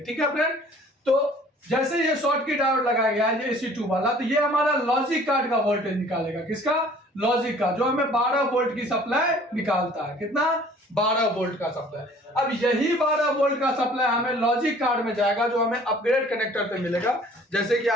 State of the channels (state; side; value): normal; both; correlation 0.52